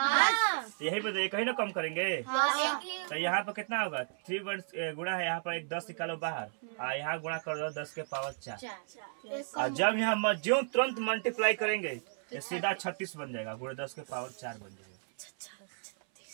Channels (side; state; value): left; silent; 55 dB below the other